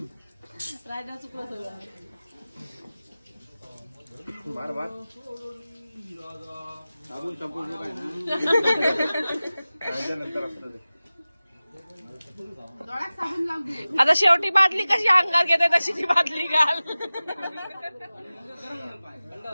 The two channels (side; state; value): both; inverted; correlation -0.96